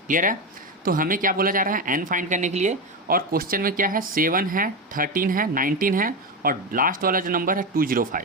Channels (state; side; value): normal; both; correlation 0.15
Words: क्लियर है? तो हमें क्या बोला जा रहा है, n फाइंड करने के लिए। और क्वेश्चन में क्या है, 7 है, 13 है, 19 है और लास्ट वाला जो नंबर है